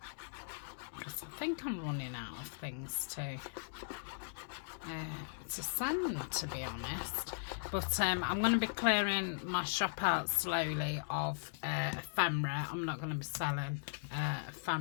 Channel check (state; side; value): silent; right; digital silence